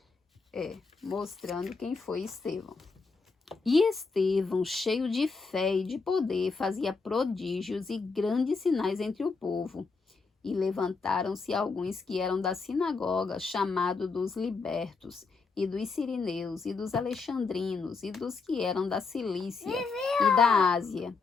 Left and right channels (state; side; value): quieter; right; 4.5 dB